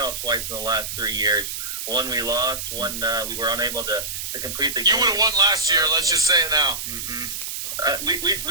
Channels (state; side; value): noise; right; hiss, 5 dB below the sound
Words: twice in the last 3 years. One we lost, one we were unable to complete the game. You would have won last year, let's just say it now.